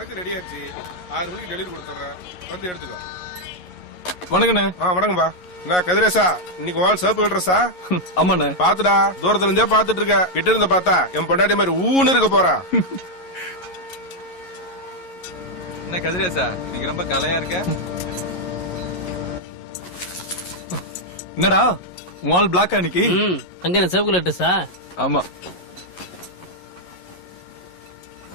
ரெடி ஆச்சு. 6 மணிக்கு டெலிவரி கொடுத்துறேன், வந்து எடுத்துக்கோ. வணக்கண்ணே. வணக்கம்பா. என்ன கதிரேசா, இன்னைக்கு வாழ் சேப்பு கட்டுறசா? ஆமாண்ணே. பாத்துடா, தூரத்துல இருந்தே பாத்துட்டு இருக்க. கிட்ட இருந்து பார்த்தா என் பொண்டாட்டி மாதிரி ஊன்னு இருக்க போறா. என்ன கதிரேசா, நீங்க ரொம்ப கலையா இருக்க. என்னடா வால் பிளாக் அன்னைக்கு? அங்க என்ன சேப்பு கட்டுறசா? ஆமா.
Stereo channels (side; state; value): right; late; 11 ms